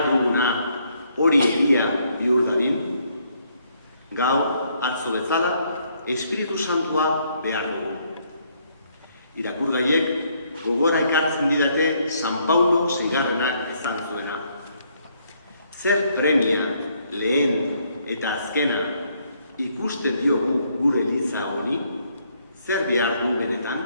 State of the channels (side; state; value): both; inverted; correlation -0.70